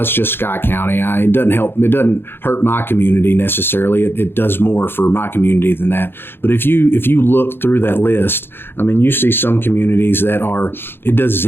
it's just Scott County. It doesn't help. It doesn't hurt my community necessarily. It does more for my community than that. But if you look through that list, you see some communities that it does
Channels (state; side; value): late; right; 0.10 ms